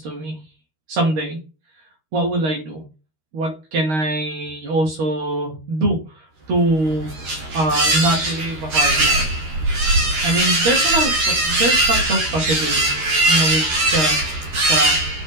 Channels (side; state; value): left; late; 13 ms